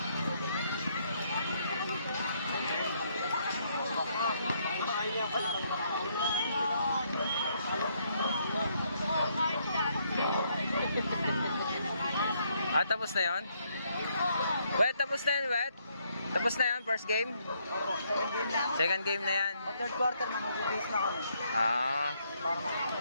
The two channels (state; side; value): inverted; both; correlation -0.72